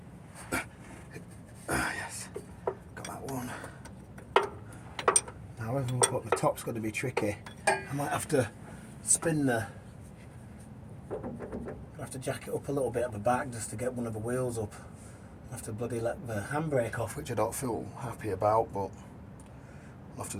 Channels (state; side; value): identical; both; correlation 1.00